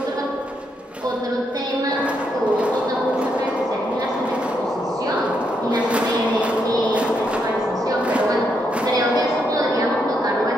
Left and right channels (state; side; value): normal; both; correlation 0.78